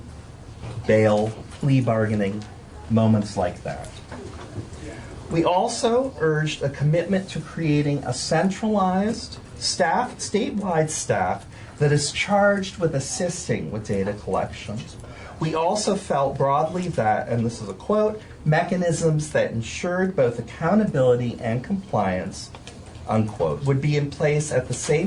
bail, plea bargaining, moments like that. We also urged a commitment to creating a centralized statewide staff that is charged with assisting with data collections. We also felt broadly that, and this is a quote, mechanisms that ensured both accountability and compliance, unquote, would be in place at the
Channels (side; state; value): both; identical; correlation 1.00